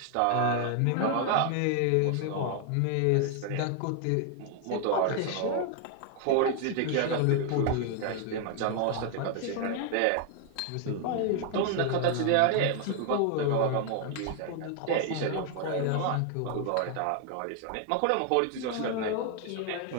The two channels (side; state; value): both; different; correlation 0.00